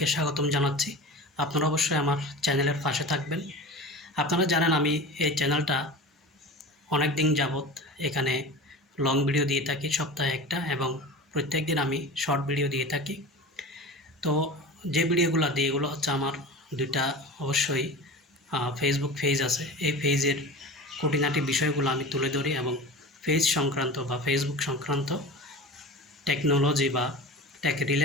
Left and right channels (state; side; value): normal; both; correlation 0.33